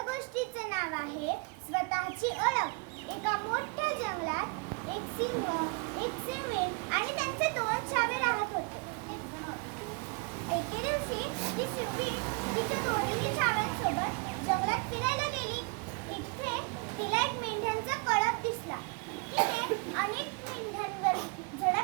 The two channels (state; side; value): quieter; left; 32.0 dB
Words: गोष्टीचं नाव आहे स्वतःची ओळख. एका मोठ्या जंगलात एक सिंह, एक सिंहीण आणि त्यांचे दोन छावे राहत होते. एके दिवशी ती सिंहीण तिच्या दोन्ही छाव्यांसोबत जंगलात फिरायला गेली. इथे तिला एक मेंढ्यांचा कळप दिसला. तिने अनेक मेंढ्यांवर